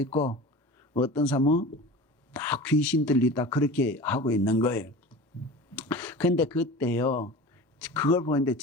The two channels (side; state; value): both; normal; correlation 0.35